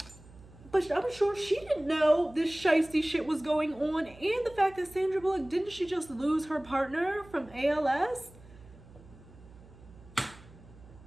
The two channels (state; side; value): noise; right; hum, 22 dB below the sound